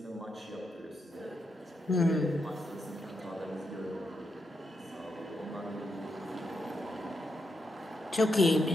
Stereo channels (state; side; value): normal; both; correlation 0.83